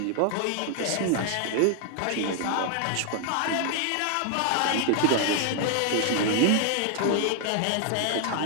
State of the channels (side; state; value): both; different; correlation 0.00